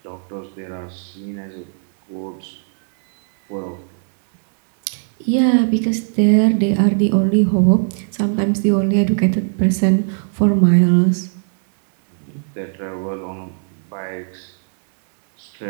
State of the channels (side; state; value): left; silent; 67 dB below the other